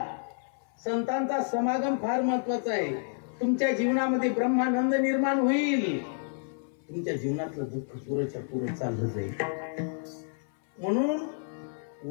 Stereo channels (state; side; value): silent; right; 58 dB below the other